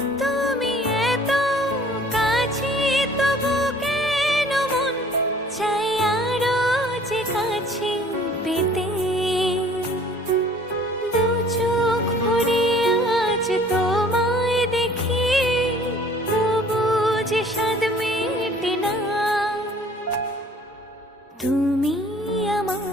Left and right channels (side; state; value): both; normal; correlation 0.53